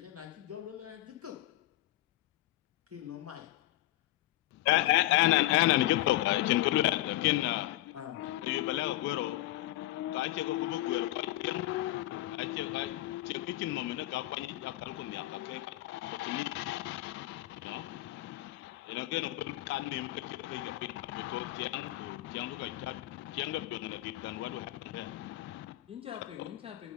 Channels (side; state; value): right; quieter; 16.3 dB